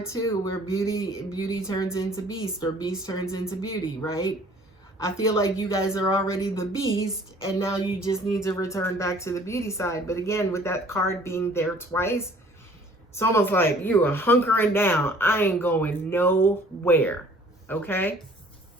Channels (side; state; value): both; normal; correlation 0.54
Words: too, where beauty turns into beast or beast turns into beauty, right? I feel like you guys are already the beast and now you just need to return back to the beauty side. But again, with that card being there twice, it's almost like you are hunkering down. I ain't going nowhere. Okay?